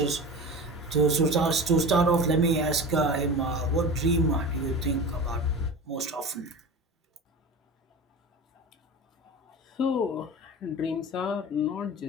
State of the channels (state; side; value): normal; both; correlation 0.31